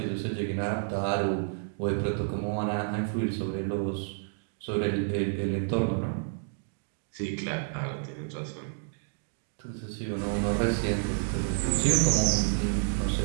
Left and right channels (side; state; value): left; silent; digital silence